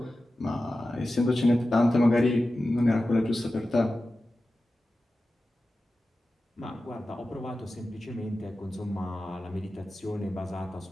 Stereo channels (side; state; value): both; normal; correlation 0.94